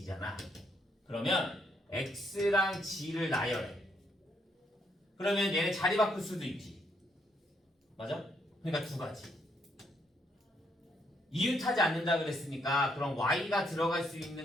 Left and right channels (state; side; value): normal; both; correlation 0.73